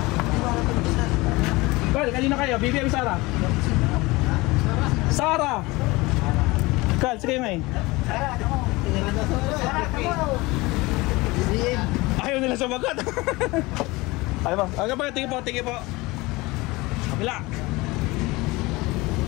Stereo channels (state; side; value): quieter; right; 22.3 dB